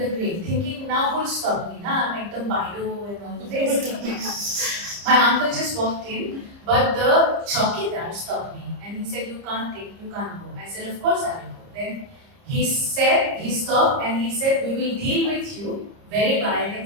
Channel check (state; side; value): late; left; 30 ms